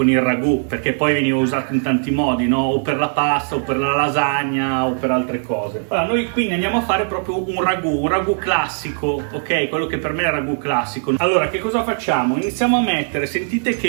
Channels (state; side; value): silent; left; 66 dB below the other